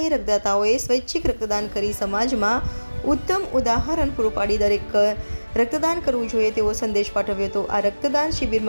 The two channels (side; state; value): both; inverted; correlation -1.00